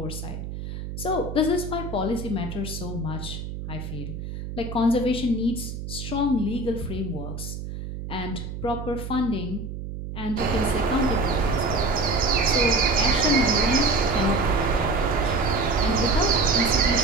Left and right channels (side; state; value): right; noise; hum, 8 dB below the sound